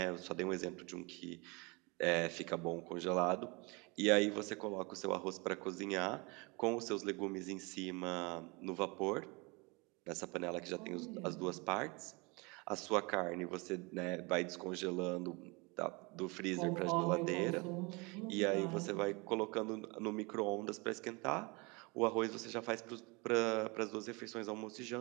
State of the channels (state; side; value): quieter; left; 27.9 dB